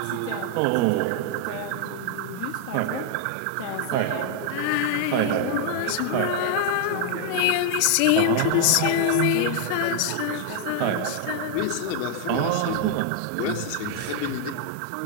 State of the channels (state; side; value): different; both; correlation 0.00